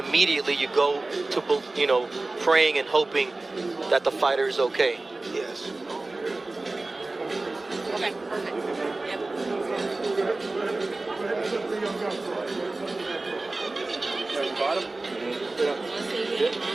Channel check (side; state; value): left; quieter; 3.1 dB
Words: you go to, praying and hoping that the fighter is okay. Yes. Okay, perfect. Yep.